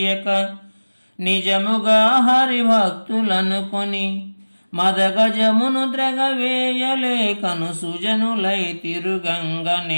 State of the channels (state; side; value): inverted; both; correlation -1.00